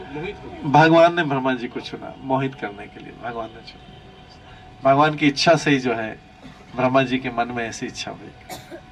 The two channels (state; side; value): identical; both; correlation 1.00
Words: हो गए? भगवान ने ब्रह्मा जी को चुना मोहित करने के लिए, भगवान ने चुना। भगवान की इच्छा से ही जो है ब्रह्मा जी के मन में ऐसी इच्छा हुई,